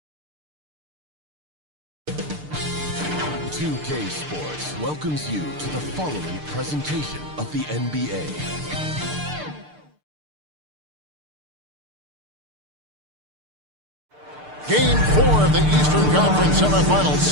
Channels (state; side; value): late; left; 6.7 ms